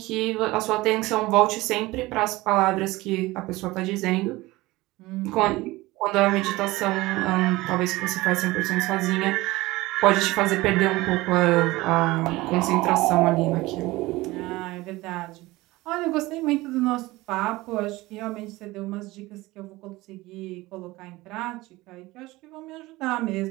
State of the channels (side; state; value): left; quieter; 19.8 dB